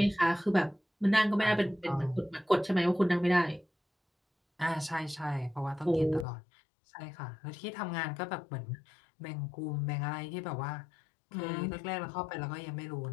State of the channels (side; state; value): right; drops out; at 6.2 s